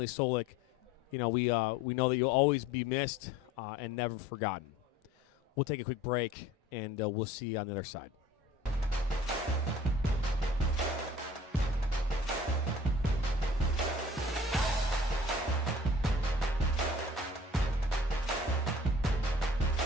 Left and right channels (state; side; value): normal; both; correlation 0.48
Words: Solak, we know that you'll always be missed and never forgotten. We'll take a quick break, and we'll see you on the other side.